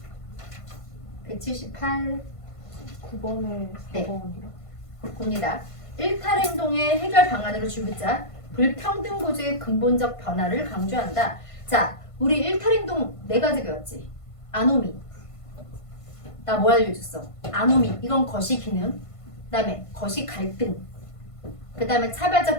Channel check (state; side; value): late; right; 1.5 ms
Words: 178. 9번에 네. 4번이요. 봅니다. 일탈 행동의 해결 방안으로 주자. 불평등 구조의 근본적 변화를 강조한다. 자, 우리 일탈 행동 4가지 배웠지. 아노미. 나 뭐 알려줬어? 아노미. 이건 거시 기능. 그 다음에 거시 갈등. 그 다음에